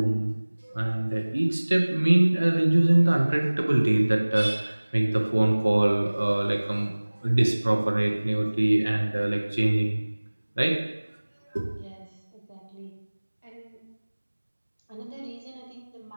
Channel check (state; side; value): inverted; both; correlation -1.00